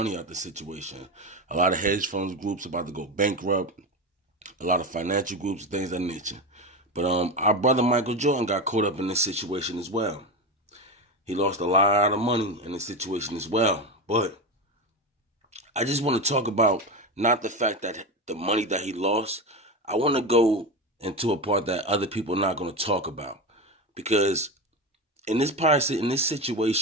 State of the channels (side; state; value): both; normal; correlation 0.20